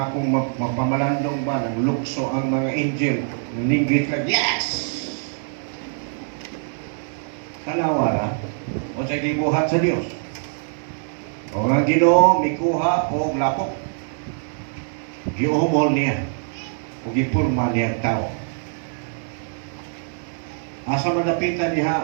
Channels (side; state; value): left; silent; digital silence